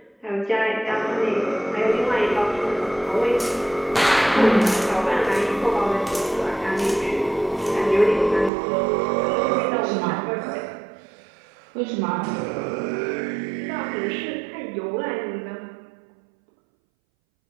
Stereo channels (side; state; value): left; drops out; at 8.5 s